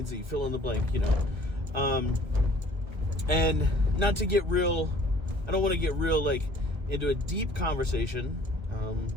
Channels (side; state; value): left; late; 1.4 ms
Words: Z, fill in the blank, and not to get real, I don't want to get real, like, into a deep conversation,